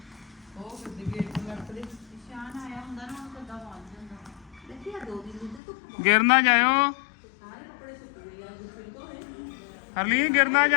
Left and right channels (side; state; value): right; drops out; at 5.6 s